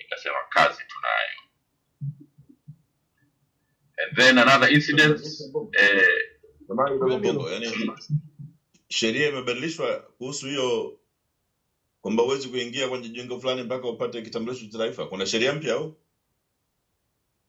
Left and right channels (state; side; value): identical; both; correlation 1.00